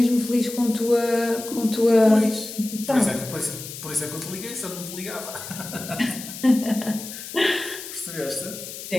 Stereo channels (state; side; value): noise; left; hiss, 11 dB below the sound